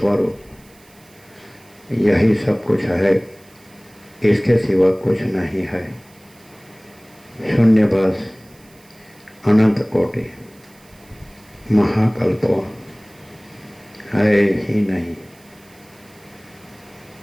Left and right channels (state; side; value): noise; right; hiss, 28 dB below the sound